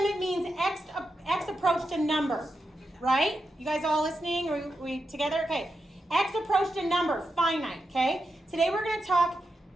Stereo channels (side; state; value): both; normal; correlation 0.87